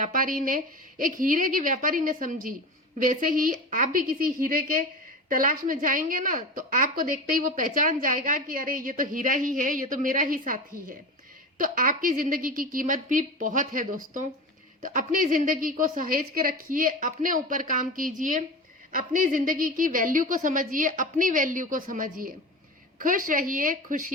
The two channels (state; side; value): normal; both; correlation 0.28